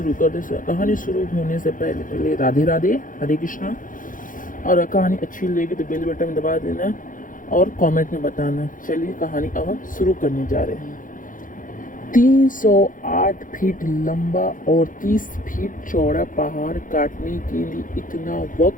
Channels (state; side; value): late; right; 0.39 ms